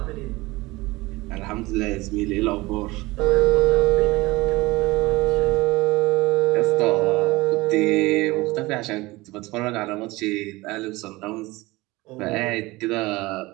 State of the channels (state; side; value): quieter; left; 21.0 dB